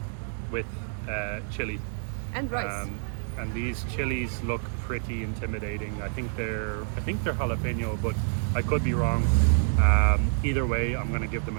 with chili. And rice. And these chilies look pretty intimidating. I think they're jalapeno, but I could be wrong. Either way, I'm gonna give them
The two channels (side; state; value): left; silent; digital silence